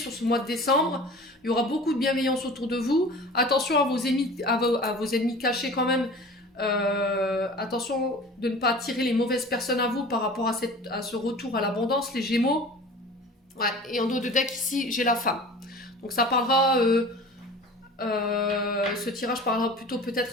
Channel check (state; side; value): normal; both; correlation 0.40